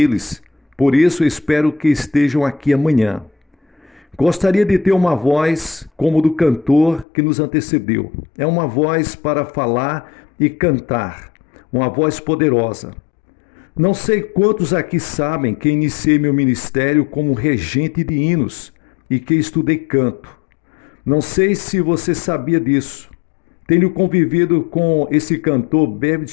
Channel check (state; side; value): drops out; right; at 7.1 s